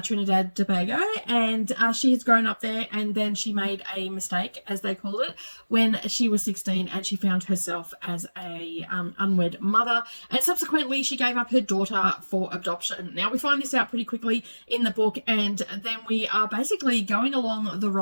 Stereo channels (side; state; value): both; inverted; correlation -1.00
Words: Trinidad Tobago, and she has grown up there, and then she made a mistake, as they called it, when she was 16, and she found herself as a unwed mother, and subsequently she gave up her daughter for adoption. Now, we find this out pretty quickly in the book, and then we are basically going along the